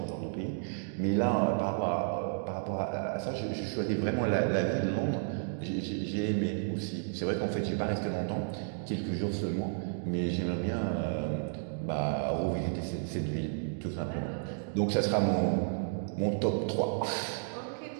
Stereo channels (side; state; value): left; silent; digital silence